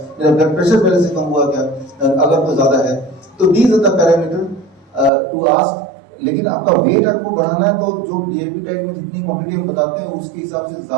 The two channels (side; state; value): left; drops out; at 5.1 s